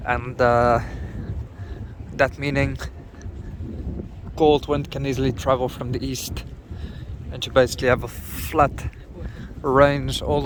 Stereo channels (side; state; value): both; identical; correlation 1.00